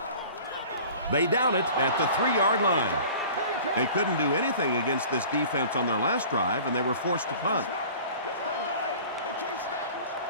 They down it at the 3-yard line. They couldn't do anything against this defense on their last drive, and they were forced to punt.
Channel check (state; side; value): inverted; both; correlation -0.44